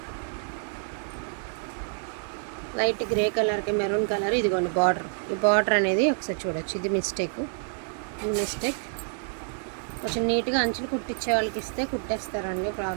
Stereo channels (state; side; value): silent; left; 59 dB below the other